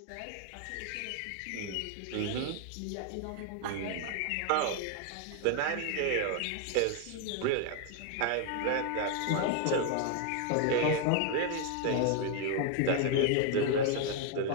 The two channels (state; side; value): different; both; correlation 0.00